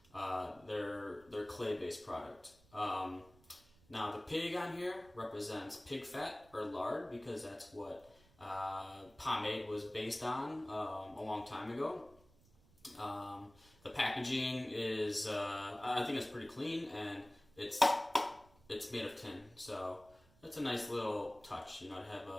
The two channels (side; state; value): right; noise; rumble, 28 dB below the sound